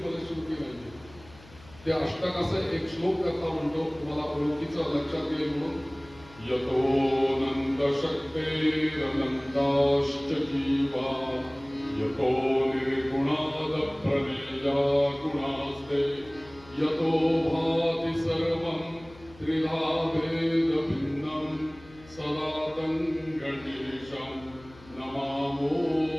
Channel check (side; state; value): left; noise; hum, 22 dB below the sound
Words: फलश्रुती नाही. ते अष्टक असं एक श्लोक करता म्हणतो, तुम्हाला ओळखीचं लक्षात येईल म्हणून. यतो नंद शक्तेरनंदाश्च जीवा यतो निर्गुणाद प्रमेया गुणास्ते यतो भाति सर्वं त्रिधा भेद भिन्नं सदा तं गणेशं नमामो